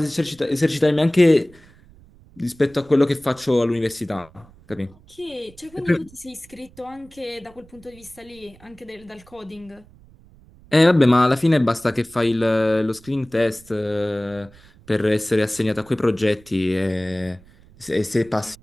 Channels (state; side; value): noise; right; rumble, 25 dB below the sound